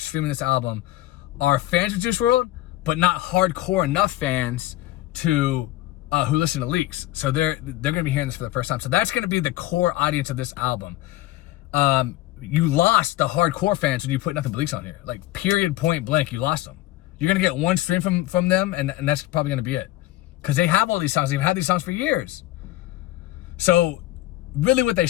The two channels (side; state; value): right; quieter; 16.3 dB